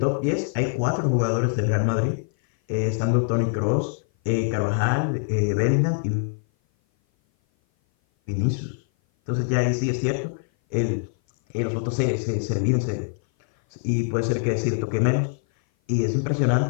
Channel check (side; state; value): right; silent; 57 dB below the other